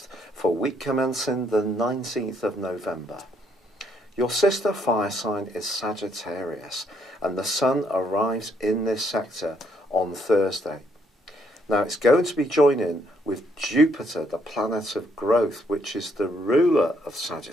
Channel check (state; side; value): normal; both; correlation 0.71